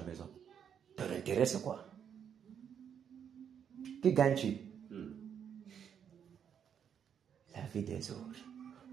maison. Ton intérêt c'est quoi? Qui gagne-tu? La vie des autres.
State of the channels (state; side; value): quieter; left; 8.2 dB